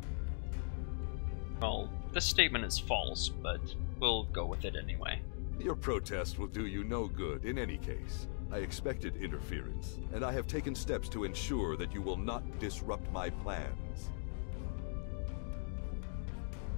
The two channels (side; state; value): right; silent; 51 dB below the other